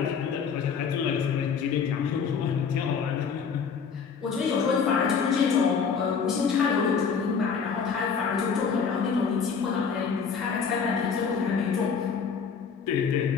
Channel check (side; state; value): right; quieter; 6.1 dB